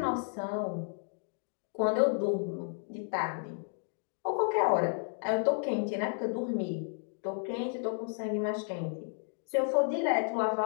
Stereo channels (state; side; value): silent; right; 56 dB below the other